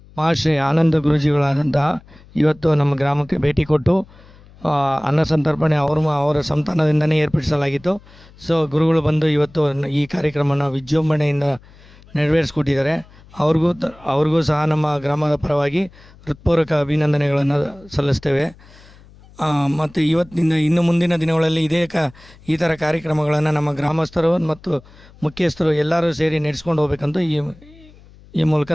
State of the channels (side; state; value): left; noise; hum, 24 dB below the sound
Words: ಮಹಾಶ್ರೀ ಆನಂದ ಗುರೂಜಿಗಳಾದಂತಹ ಇವತ್ತು ನಮ್ಮ ಗ್ರಾಮಕ್ಕೆ ಭೇಟಿ ಕೊಟ್ಟು ಅನ್ನ ಸಂತರ್ಪಣೆ ಅವರ ಸಂತಾನದಿಂದನೇ ಏರ್ಪಡಿಸಲಾಗಿತ್ತು. ಸೊ ಗುರುಗಳು ಬಂದು ಇವತ್ತು ಈ ಕಾರ್ಯಕ್ರಮನ ವಿಜೃಂಭಣೆಯಿಂದ ನೆರವೇರಿಸ್ಕೊಟ್ಟಿದ್ದಾರೆ. ಅವ್ರಿಗೂ ಸಹ ನಮ್ಮ ಗ್ರಾಮದ ಪರವಾಗಿ ಹೃತ್ಪೂರ್ವಕ ಅಭಿನಂದನೆಗಳನ್ನು ಸಲ್ಲಿಸ್ತೇವೆ. ಮತ್ತು ಇವತ್ತಿನ ಇನ್ನು ಮುಂದಿನ ದಿನಗಳಲ್ಲಿ ಈ ಥರ ಕಾರ್ಯಕ್ರಮಗಳನ್ನು ನಮ್ಮ ಗ್ರಾಮಸ್ಥರು ಮತ್ತು ಮುಖ್ಯಸ್ಥರು ಎಲ್ಲರೂ ಸೇರಿ ನಡೆಸ್ಕೊಂಡು ಹೋಗ್ಬೇಕಂತ ಈ ಮೂಲಕ